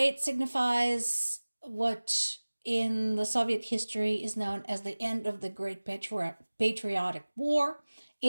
signifies what in the Soviet history is known as the end of the Great Patriotic War.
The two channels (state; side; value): inverted; both; correlation -1.00